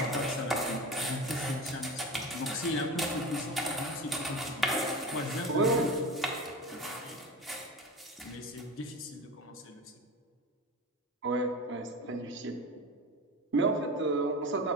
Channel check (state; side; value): normal; both; correlation 0.28